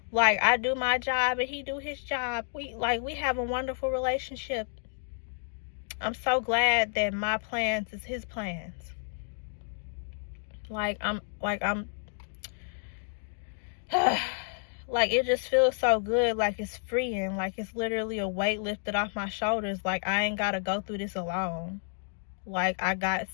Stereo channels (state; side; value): silent; right; digital silence